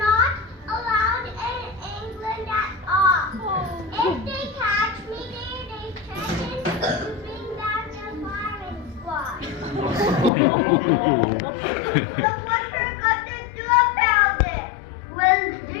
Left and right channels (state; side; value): drops out; right; at 10.3 s